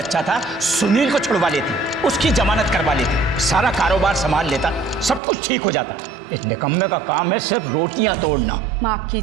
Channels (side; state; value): left; drops out; at 5.2 s